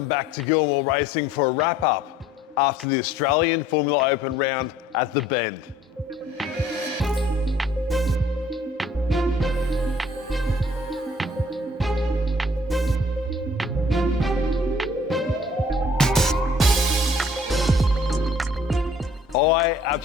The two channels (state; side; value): normal; both; correlation 0.56